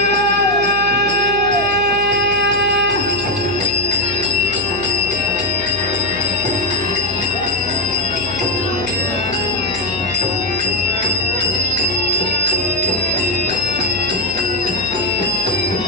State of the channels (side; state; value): left; noise; hum, 12 dB below the sound